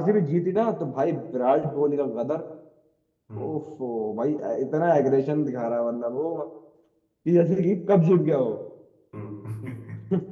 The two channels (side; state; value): both; identical; correlation 1.00